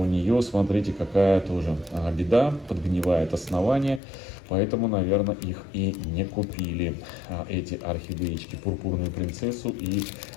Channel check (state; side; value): drops out; right; at 4.0 s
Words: нее, смотрите, какая тоже беда. Подгнивает основание. Поэтому, наверное, их и не купили, эти орхидеечки, пурпурную принцессу и